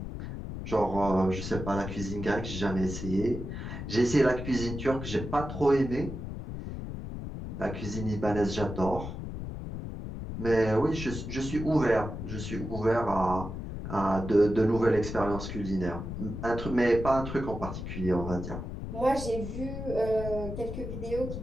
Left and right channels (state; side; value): noise; left; rumble, 7 dB below the sound